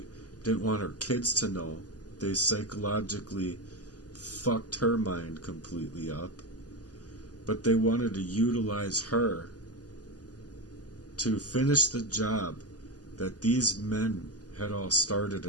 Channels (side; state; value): right; late; 0.68 ms